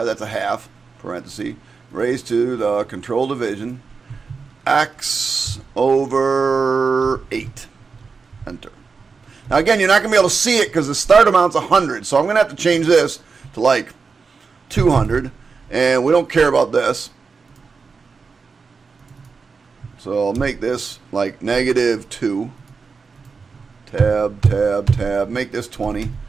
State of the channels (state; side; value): quieter; left; 4.9 dB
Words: that's a half, parenthesis, raised to the control division, x over 8. Enter. Now again, you're not going to be able to see it because the start amount's 100. So I'm going to have to change this to like 200. And we don't care about this. So I'll make this like -2. Tab, tab, tab. Make this 20